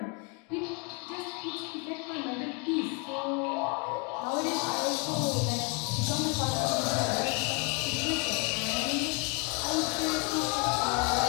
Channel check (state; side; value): quieter; right; 31.6 dB